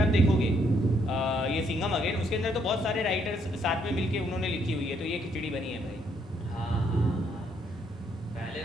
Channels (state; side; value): normal; both; correlation 0.71